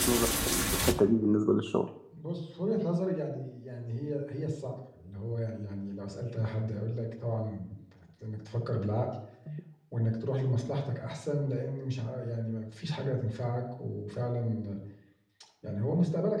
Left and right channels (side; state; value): both; identical; correlation 1.00